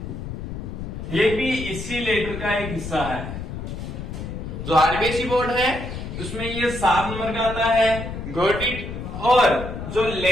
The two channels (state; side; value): noise; left; rumble, 7 dB below the sound